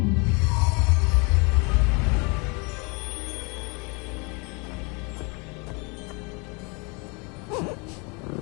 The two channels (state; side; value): quieter; right; 30.7 dB